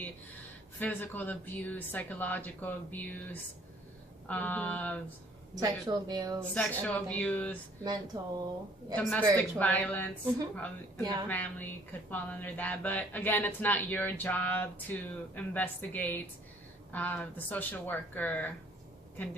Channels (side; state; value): both; normal; correlation 0.59